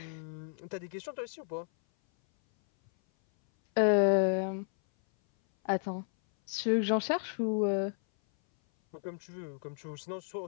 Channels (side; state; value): right; silent; 56 dB below the other